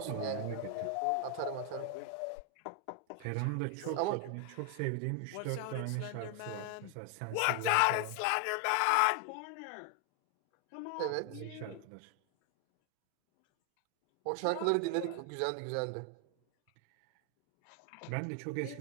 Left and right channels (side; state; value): both; different; correlation 0.00